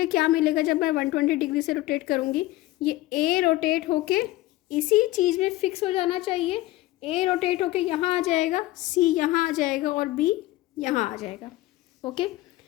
क्या मिलेगा जब मैं 120 डिग्री से रोटेट करूँगी, ये ए रोटेट होके इसी चीज़ में फिक्स हो जाना चाहिए। ए रोटेट होके यहाँ आ जाएगा, सी यहाँ आ जाएगा और बी यहाँ आ जाएगा। ओके,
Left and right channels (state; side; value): quieter; right; 17.6 dB